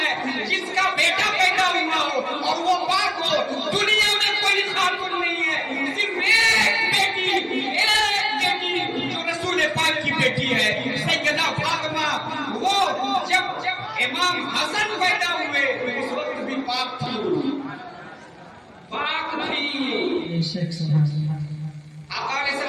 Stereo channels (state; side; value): identical; both; correlation 1.00